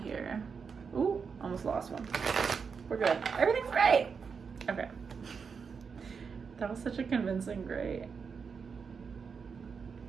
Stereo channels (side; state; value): left; quieter; 5.8 dB